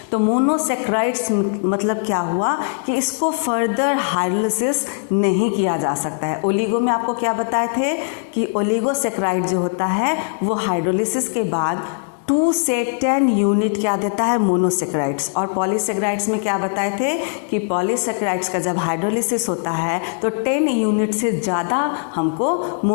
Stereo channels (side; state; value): right; silent; digital silence